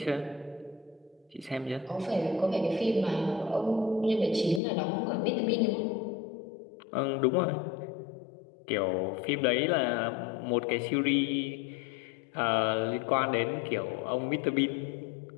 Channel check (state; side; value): drops out; right; at 4.6 s